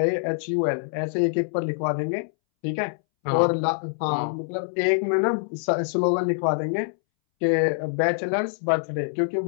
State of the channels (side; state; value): right; silent; 62 dB below the other